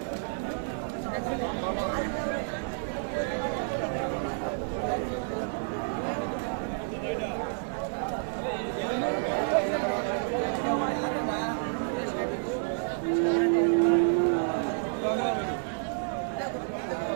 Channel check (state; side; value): silent; left; digital silence